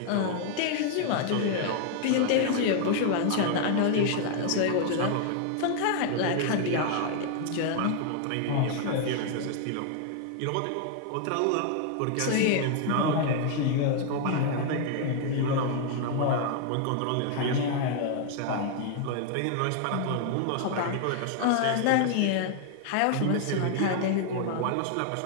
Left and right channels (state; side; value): different; both; correlation 0.00